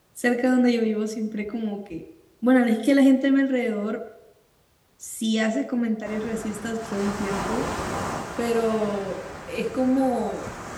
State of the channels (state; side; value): identical; both; correlation 1.00